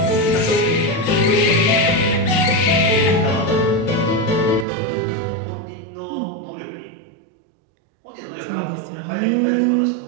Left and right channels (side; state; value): left; drops out; at 4.7 s